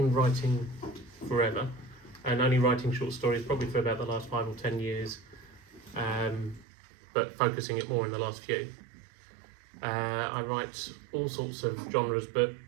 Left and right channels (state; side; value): drops out; left; at 6.7 s